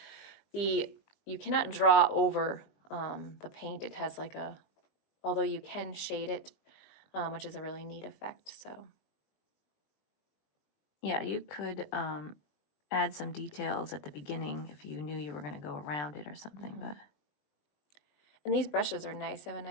You cannot draw over the paint. It has although you can shade it, which is a really neat effect. So Yeah, you could add some details at the beginning if you knew you were going to go around it or something, but and these brushes are nice. They have a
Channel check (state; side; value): late; right; 20 ms